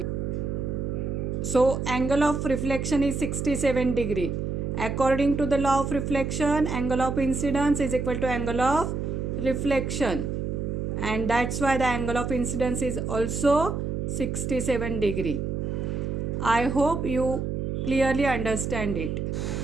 So angle of reflection is 67 degree. According to the law of reflection, angle of incidence is equal to angle of reflection, and that's why the angle of incidence is also 67 degree. I hope you clearly understand it.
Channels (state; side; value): noise; right; hum, 2 dB below the sound